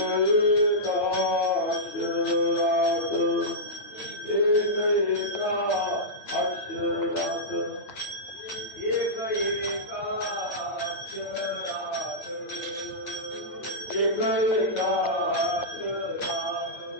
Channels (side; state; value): right; late; 8.8 ms